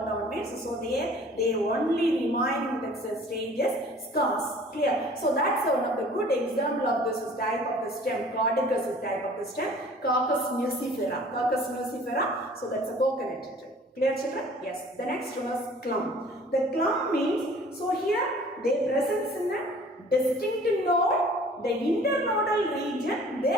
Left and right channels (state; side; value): normal; both; correlation 0.50